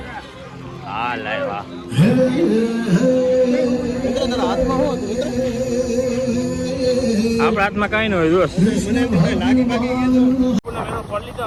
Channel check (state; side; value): identical; both; correlation 1.00